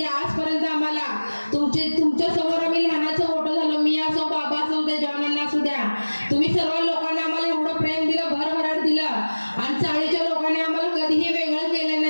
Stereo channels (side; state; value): both; inverted; correlation -1.00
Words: आजपर्यंत आम्हाला तुमच्या समोर आम्ही लहानाचं मोठं झालो, मी असो बाबा असो त्या जवानांना असू द्या, तुम्ही सर्व लोकांनी आम्हाला एवढं प्रेम दिलं, भरभराट दिलं आणि चाळीच्या लोकांनी आम्हाला कधीही वेगळं केलं